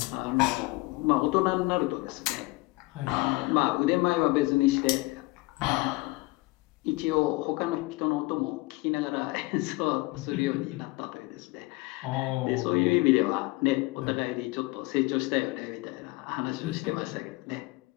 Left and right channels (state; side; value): quieter; right; 22.8 dB